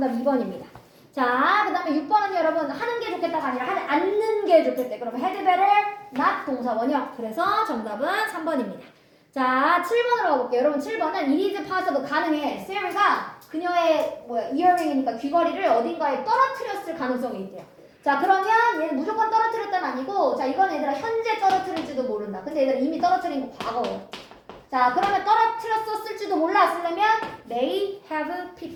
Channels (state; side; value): identical; both; correlation 1.00